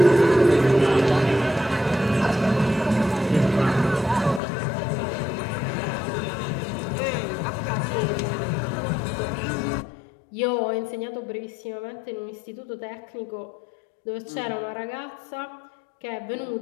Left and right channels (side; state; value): right; drops out; at 4.4 s